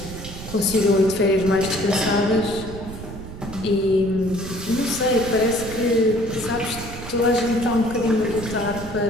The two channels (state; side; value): noise; right; rumble, 11 dB below the sound